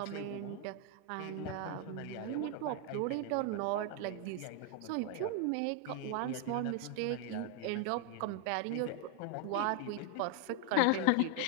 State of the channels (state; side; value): different; both; correlation 0.00